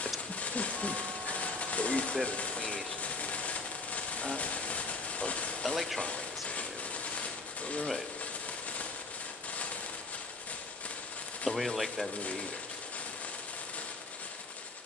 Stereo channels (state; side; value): quieter; right; 3.5 dB